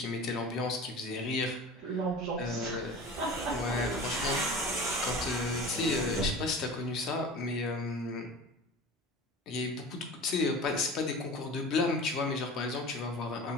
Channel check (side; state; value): both; normal; correlation 0.36